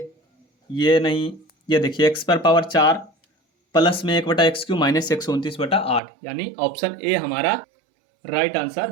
नहीं, ये देखिए x पर पावर 4 प्लस में 1/x³ माइनस 129/8, यानी ऑप्शन ए हमारा राइट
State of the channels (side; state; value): left; drops out; at 6.0 s